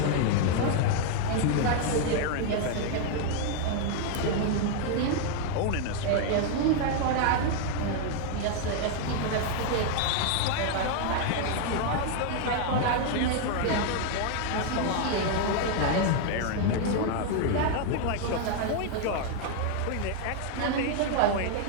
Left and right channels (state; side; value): different; both; correlation 0.00